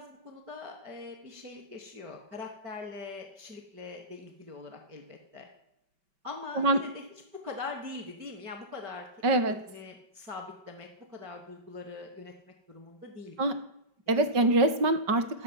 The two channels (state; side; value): late; left; 5.1 ms